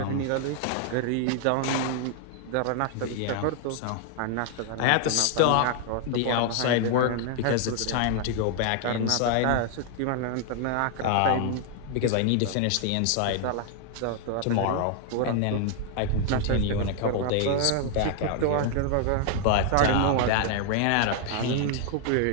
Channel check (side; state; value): both; different; correlation 0.00